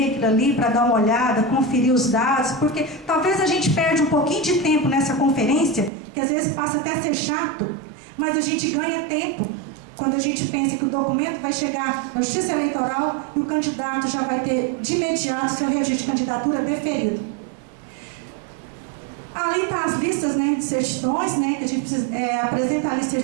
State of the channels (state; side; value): drops out; left; at 5.9 s